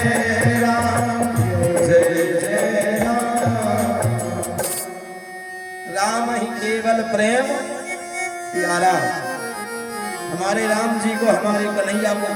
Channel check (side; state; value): both; identical; correlation 1.00